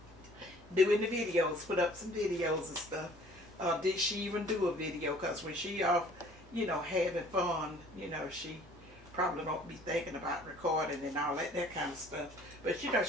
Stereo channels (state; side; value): normal; both; correlation 0.54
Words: doing the videos, put up some videos and stuff. Did she even do a video? Because when she off, having fun, she probably don't be thinking about recording and all that kind of stuff. But she